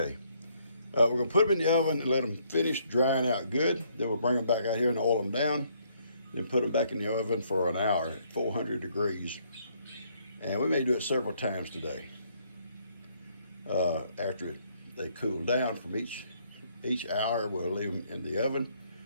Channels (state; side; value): inverted; both; correlation -0.69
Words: We're gonna put them in the oven and let them finish drying out good. Then we'll bring them back out here and oil them down. Then put them back in the oven for an hour at 400 degrees. And we may do it several times today. After they cool down from each hour, we'll leave them in the oven.